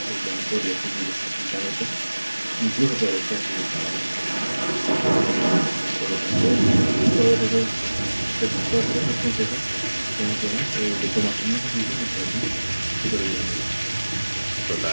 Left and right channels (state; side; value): inverted; both; correlation -1.00